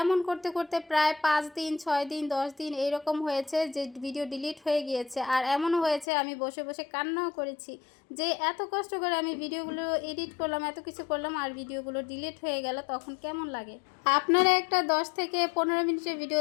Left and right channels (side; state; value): right; drops out; at 6.1 s